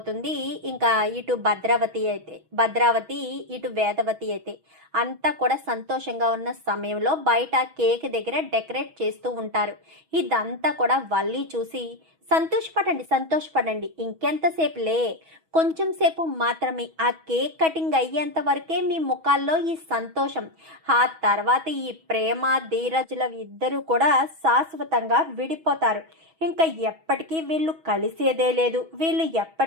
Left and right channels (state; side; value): late; left; 6.2 ms